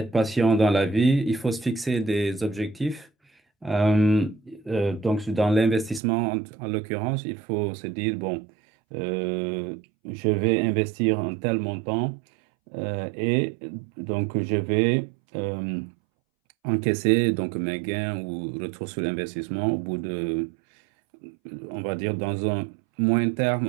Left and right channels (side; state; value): left; drops out; at 6.0 s